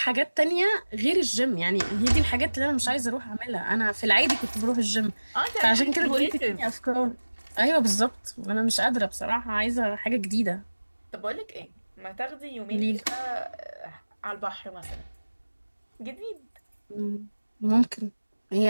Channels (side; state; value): both; inverted; correlation -1.00